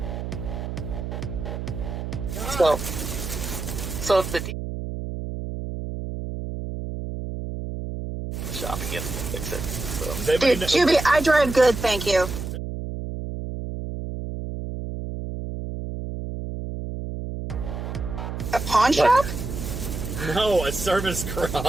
So if the shop again, fix it. So. Dude, Juby, I drive good, thank you. A pawn shop? No, a service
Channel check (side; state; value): right; noise; hum, 6 dB below the sound